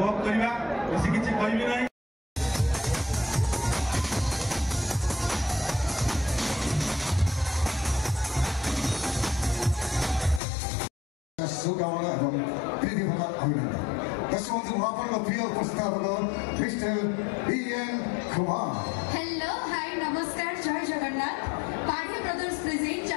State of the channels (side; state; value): right; drops out; at 10.4 s